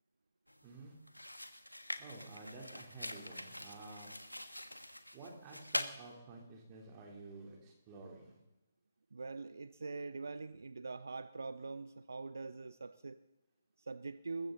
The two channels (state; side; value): inverted; both; correlation -0.92